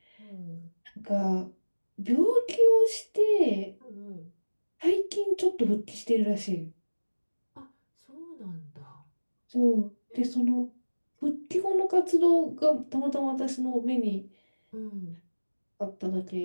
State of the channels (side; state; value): both; inverted; correlation -1.00